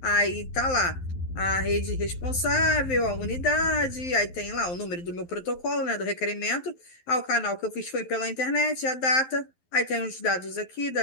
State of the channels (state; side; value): late; right; 11 ms